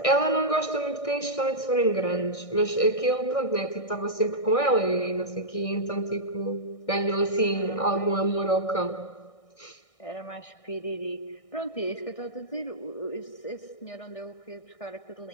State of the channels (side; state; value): right; late; 1.6 ms